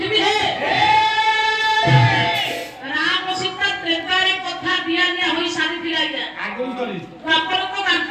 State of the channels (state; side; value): identical; both; correlation 1.00